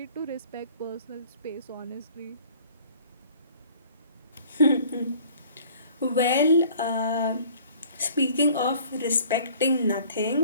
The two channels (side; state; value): both; inverted; correlation -0.52